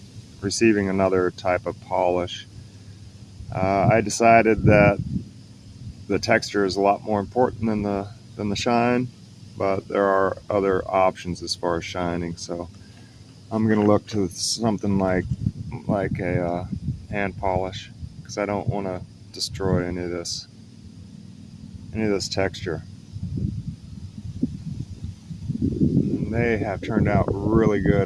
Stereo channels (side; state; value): both; identical; correlation 1.00